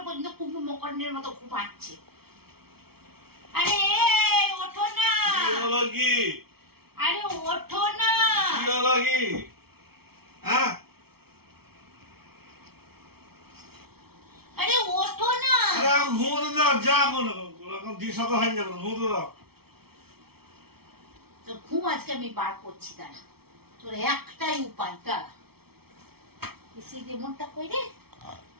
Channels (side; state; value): left; late; 0.95 ms